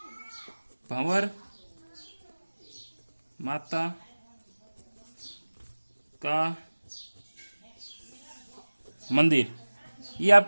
भंवर माता का मंदिर ये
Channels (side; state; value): both; inverted; correlation -1.00